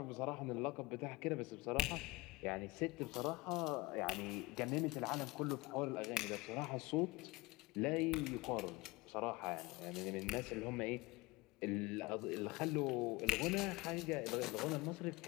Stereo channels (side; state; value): right; quieter; 21.4 dB